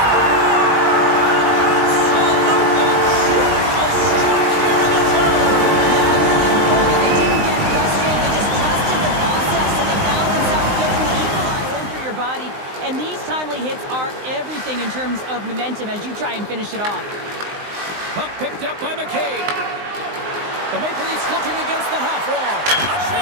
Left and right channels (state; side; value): late; left; 19 ms